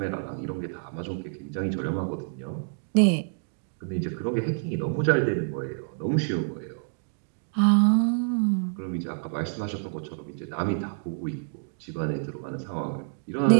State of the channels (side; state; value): left; silent; digital silence